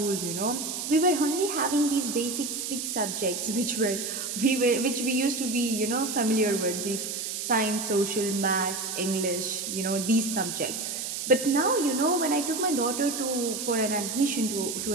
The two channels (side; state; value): right; noise; hiss, 4 dB below the sound